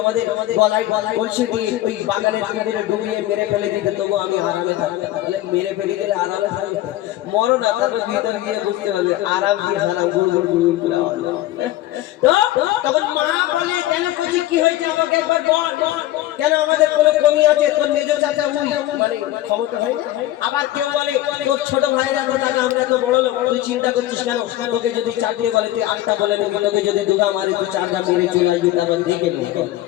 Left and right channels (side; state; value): right; quieter; 14.8 dB